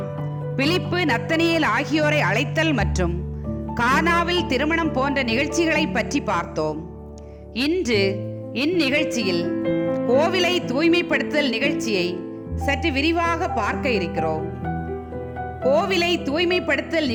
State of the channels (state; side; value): identical; both; correlation 1.00